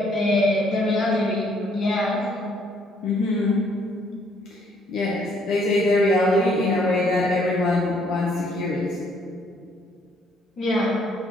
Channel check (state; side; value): normal; both; correlation 0.66